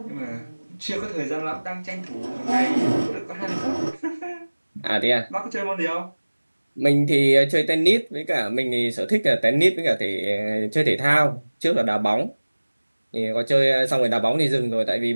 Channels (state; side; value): inverted; both; correlation -1.00